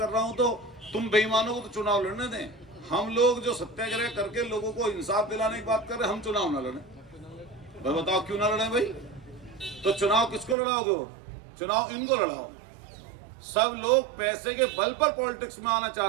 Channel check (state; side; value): drops out; left; at 10.6 s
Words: रहा हूं तो तुम बेईमानों को तो चुनाव लड़ने दें। हम लोग जो सत्याग्रह करके लोगों को इंसाफ दिलाने की बात कर रहे हैं, हम चुनाव ना लड़ें? भाई बताओ क्यों ना लड़ें भाई? तो चुनाव किसको लड़ाओगे? वो चुनाव इनको लड़ाओ। सब लोग पैसे के बल पर पॉलिटिक्स में आना